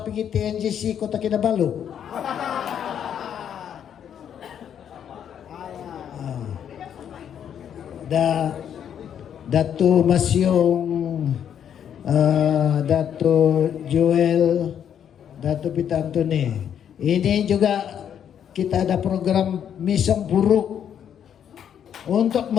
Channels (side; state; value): right; quieter; 9.0 dB